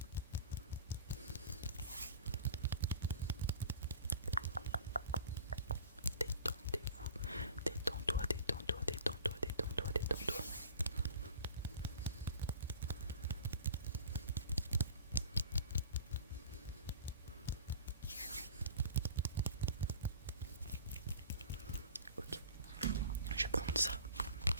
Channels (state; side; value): inverted; both; correlation -0.42